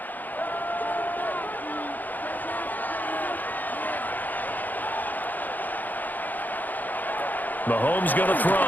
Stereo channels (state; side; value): late; right; 0.084 ms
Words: Mahomes going to